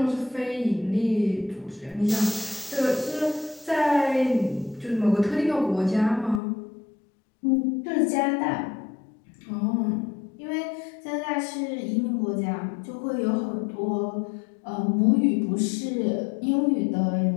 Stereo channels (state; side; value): drops out; right; at 6.4 s